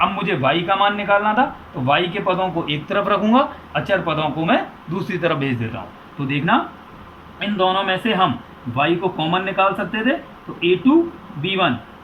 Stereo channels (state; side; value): identical; both; correlation 1.00